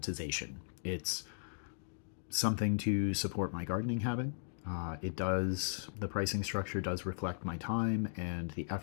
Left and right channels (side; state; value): right; silent; digital silence